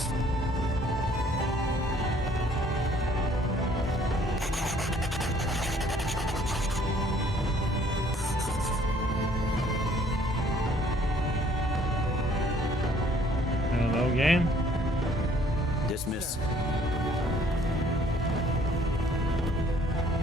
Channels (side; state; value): both; normal; correlation 0.59